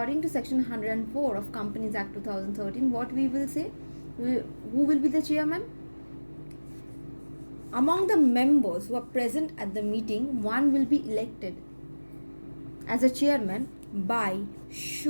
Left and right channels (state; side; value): inverted; both; correlation -1.00